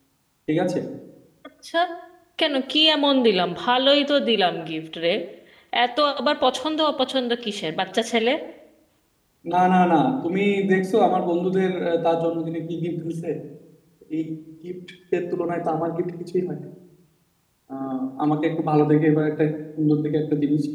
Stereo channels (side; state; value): both; identical; correlation 1.00